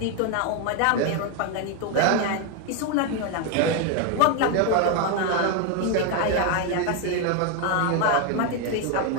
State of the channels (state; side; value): different; both; correlation 0.01